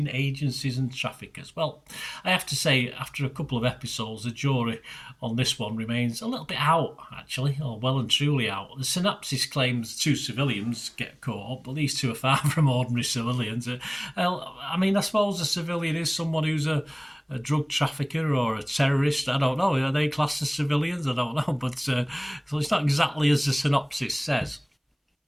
agencies and traffickers. Well, I have to say, after a couple of episodes, the jury on this one remains a little bit out, actually, or well and truly out. The synopsis claims 2 civilians get caught up, but these 2 are far from ordinary civilians. I mean, I suppose a civilian is someone who's a drug trafficker or a terrorist. I don't know. Are they classed as civilians? I don't know. But so it's not exactly as the synopsis says.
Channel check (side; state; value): both; identical; correlation 1.00